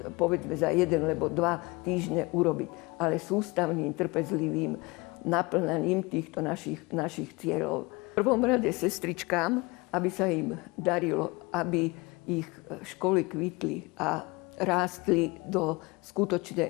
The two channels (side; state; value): right; quieter; 24.9 dB